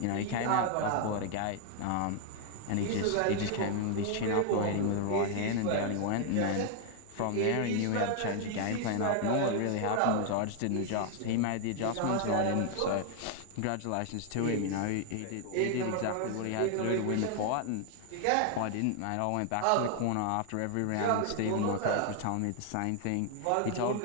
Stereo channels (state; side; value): different; both; correlation 0.00